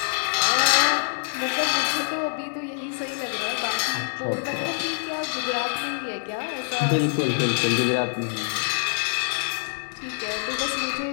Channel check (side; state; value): right; silent; 62 dB below the other